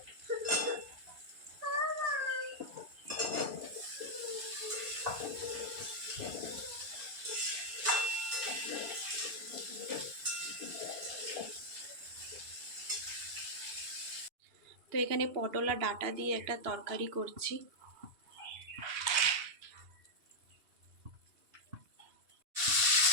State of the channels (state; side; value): late; left; 2.8 ms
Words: তো এখানে পটল আর ডাঁটা দিয়ে একটা তরকারি করছি।